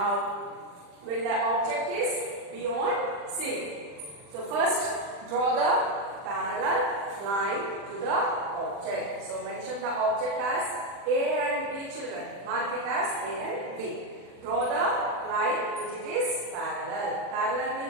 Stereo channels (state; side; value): late; left; 40 ms